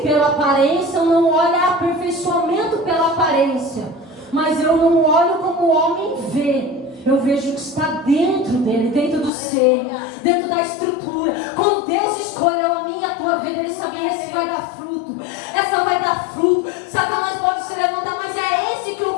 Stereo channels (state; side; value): drops out; right; at 9.3 s